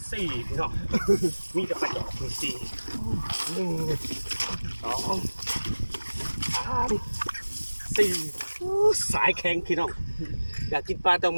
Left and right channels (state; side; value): inverted; both; correlation -1.00